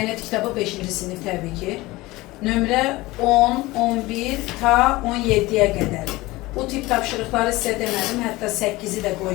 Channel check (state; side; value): quieter; right; 20.1 dB